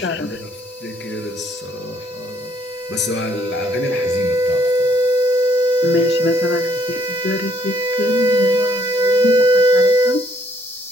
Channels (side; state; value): both; normal; correlation 0.66